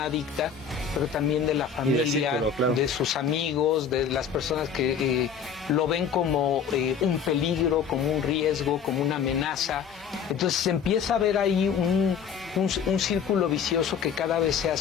adicta, pero también de la familia, círculo, claro. De sus amigos, de las personas que lo ven como un peligro, como un riesgo, como una amenaza. Entonces se empieza a ver ahí un círculo vicioso que cada vez se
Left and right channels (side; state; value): right; quieter; 7.1 dB